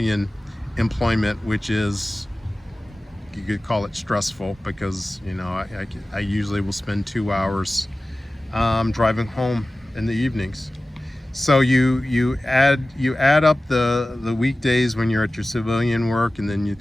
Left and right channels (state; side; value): normal; both; correlation 0.97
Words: employment, which is, you could call it stressful, because, you know, I usually will spend 2 hours driving home in the evenings. So you add up the weekdays when you're at your civilian work, and then